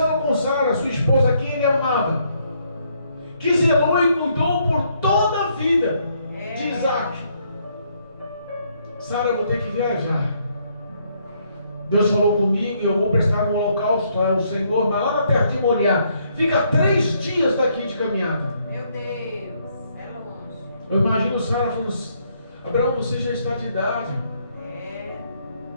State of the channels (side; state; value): both; inverted; correlation -0.71